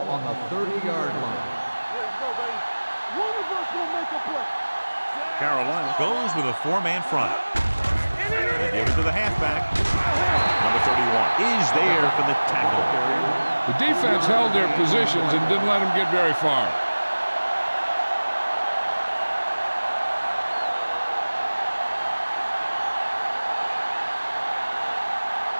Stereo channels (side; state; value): both; inverted; correlation -1.00